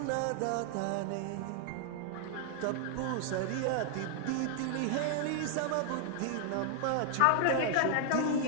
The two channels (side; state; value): both; different; correlation 0.00